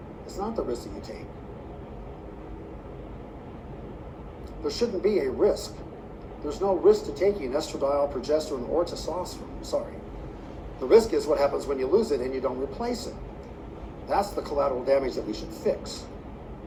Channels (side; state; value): both; identical; correlation 1.00